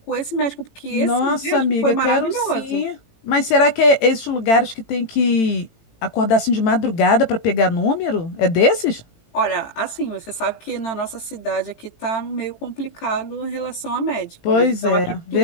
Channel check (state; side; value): late; right; 18 ms